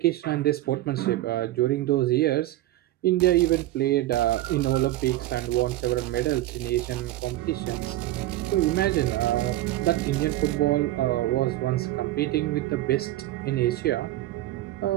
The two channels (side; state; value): left; quieter; 15.5 dB